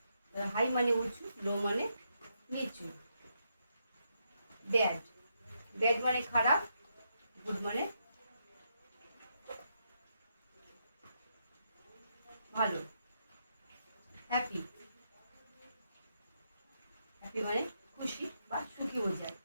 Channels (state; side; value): inverted; both; correlation -0.80